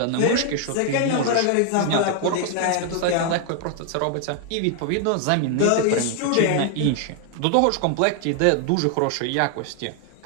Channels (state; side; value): different; both; correlation 0.00